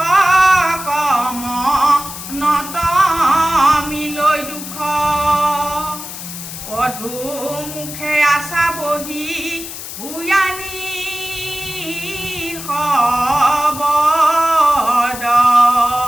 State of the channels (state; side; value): noise; left; hiss, 10 dB below the sound